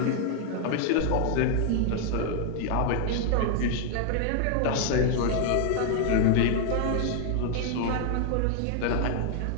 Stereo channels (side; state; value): both; different; correlation 0.00